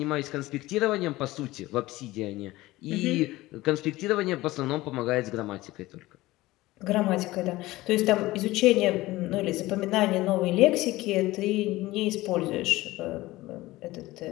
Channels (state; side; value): quieter; right; 18.4 dB